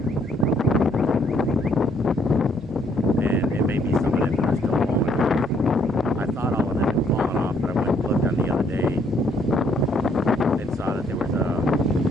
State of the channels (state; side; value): normal; both; correlation 0.68